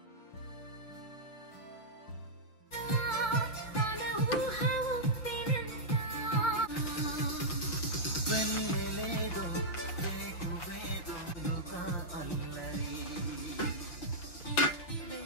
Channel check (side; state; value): right; late; 6.3 ms